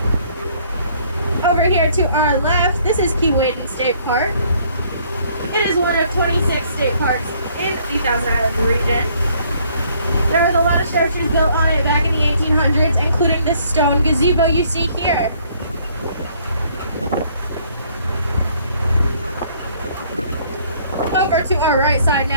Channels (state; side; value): inverted; both; correlation -0.63